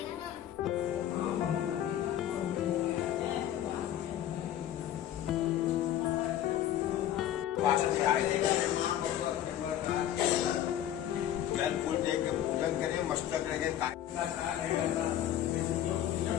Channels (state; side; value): quieter; right; 11.5 dB